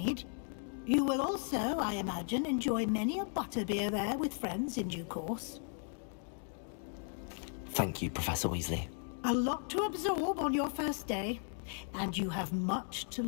You will also, I imagine, enjoy many a butterbeer there with friends in due course. Thank you, Professor Weasley. A lot to absorb on your first day, and you have much to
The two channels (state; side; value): silent; right; 54 dB below the other